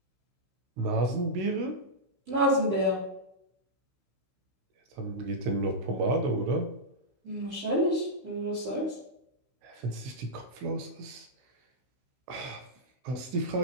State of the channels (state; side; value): late; left; 16 ms